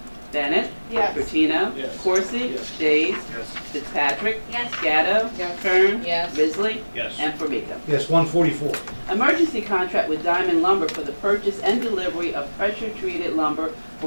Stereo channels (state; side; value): inverted; both; correlation -1.00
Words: Bennett? Yes. Bertino? Yes. Corsi? Yes. Days? Yes. Fitzpatrick? Yes. Gatto? Yes. Kern? Yes. Risley? Yes. And Formica. Yes, 144. Emergency contract with Diamond Lumber for the purchase and delivery of pressure-treated lumber